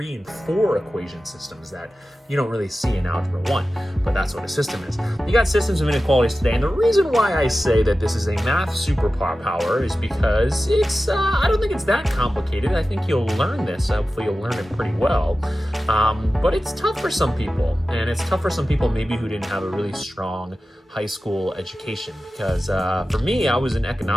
and 4 equation systems that you don't really see in Algebra 1, but that's what a system is. You got systems of inequalities today, and the reason why I say that this is a math superpower is because it's, I don't think it's that complicated. I think you'll learn this. Hopefully you'll learn it pretty well, but it's tough for some people, and it's tough for some people maybe who didn't have a really strong high school education, because for me, I was an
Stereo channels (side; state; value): both; normal; correlation 0.94